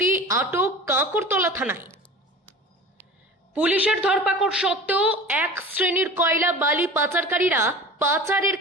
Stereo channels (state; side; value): normal; both; correlation 0.37